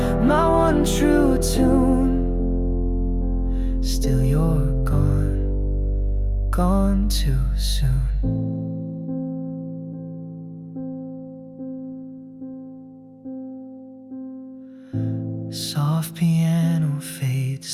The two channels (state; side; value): identical; both; correlation 1.00